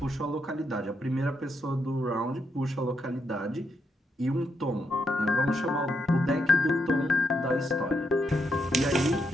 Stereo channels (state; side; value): normal; both; correlation 0.80